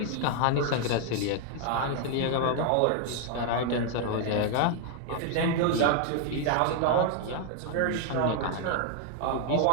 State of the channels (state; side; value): different; both; correlation 0.00